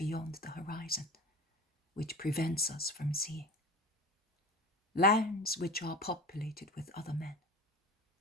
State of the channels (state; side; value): normal; both; correlation 0.34